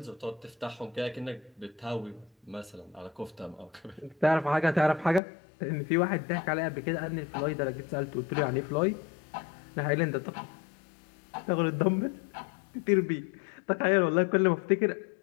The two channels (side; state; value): right; drops out; at 5.2 s